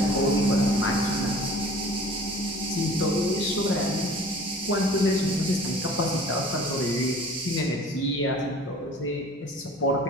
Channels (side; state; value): both; normal; correlation 0.46